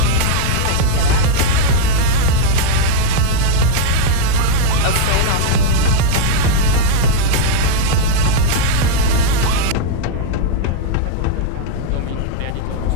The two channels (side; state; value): both; different; correlation -0.01